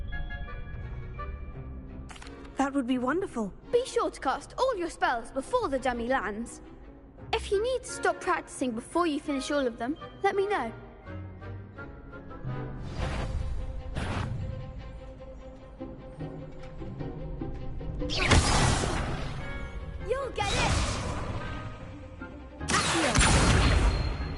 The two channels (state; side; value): identical; both; correlation 1.00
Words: That would be wonderful. Be sure to cast all your spells before the dummy lands. If you need to stop practicing before you finish all of them, let me know. You'll get it!